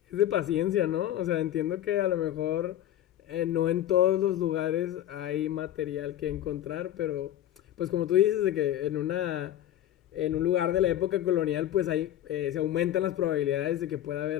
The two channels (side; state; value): right; quieter; 12.1 dB